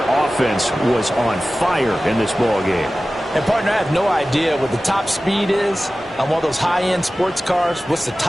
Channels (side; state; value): both; normal; correlation 0.96